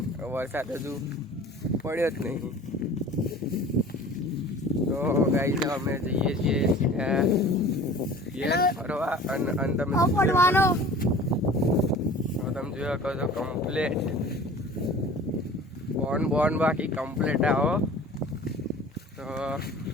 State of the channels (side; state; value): both; normal; correlation 0.43